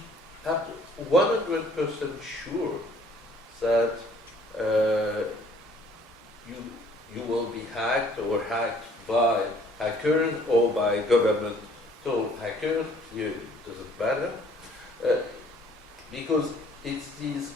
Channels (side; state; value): both; normal; correlation 0.58